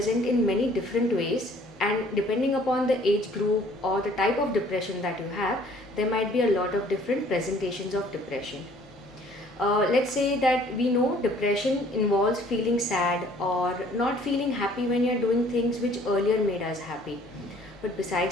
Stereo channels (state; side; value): normal; both; correlation 0.56